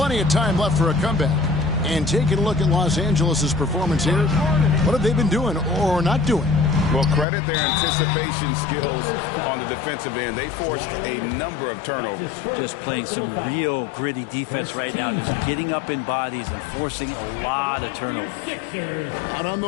of time left for a comeback. And taking a look at Los Angeles' performance here, what have they been doing or not doing? Well, credit their anticipation skills on the defensive end. They forced a number of turnovers. Just playing some real gritty defense right now. Just getting up in bodies and forcing a lot of turnovers. Out on the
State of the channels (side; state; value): right; drops out; at 7.2 s